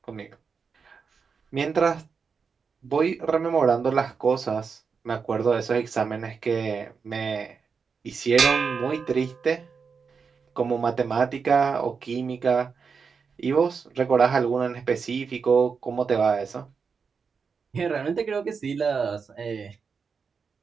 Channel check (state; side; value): quieter; left; 5.6 dB